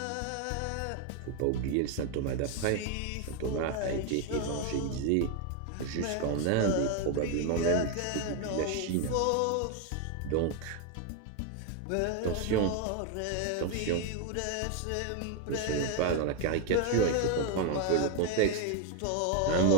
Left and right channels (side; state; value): both; different; correlation 0.01